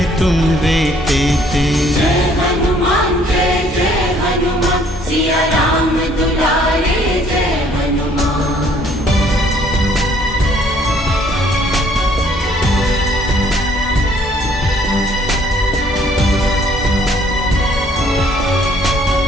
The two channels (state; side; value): normal; both; correlation 0.61